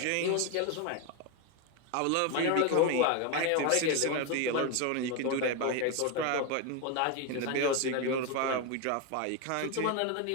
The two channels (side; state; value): both; different; correlation 0.02